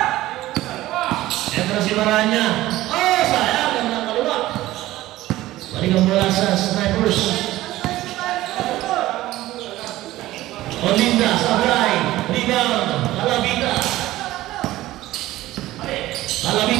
Ito na si Maranya. Sayang. Ang nakaliwa. Balik ang bola sa Snipers. Olinda sa right. Rebound.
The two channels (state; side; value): quieter; left; 16.2 dB